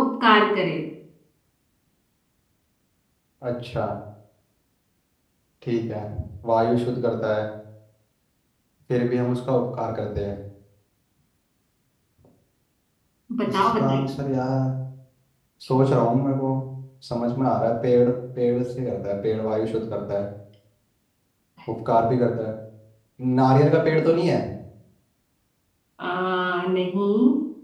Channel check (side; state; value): both; identical; correlation 1.00